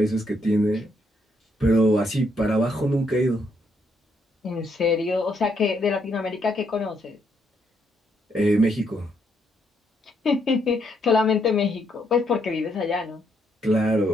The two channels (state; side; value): normal; both; correlation 0.74